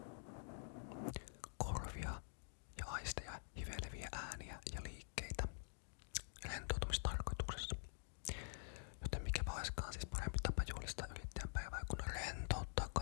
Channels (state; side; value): silent; right; digital silence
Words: korvia ja aisteja, hiveleviä ääniä ja liikkeitä rentoutumistarkoituksessa. Joten mikä vaiskaan siis parempi tapa juhlistaa yrittäjän päivää, kun rentouttaa